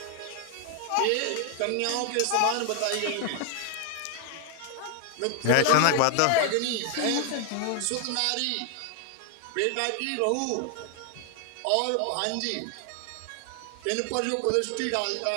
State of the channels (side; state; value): both; different; correlation 0.00